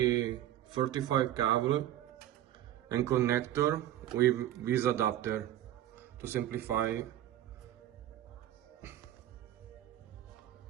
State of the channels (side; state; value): left; quieter; 12.6 dB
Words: cable and connector with this adapter to simplify.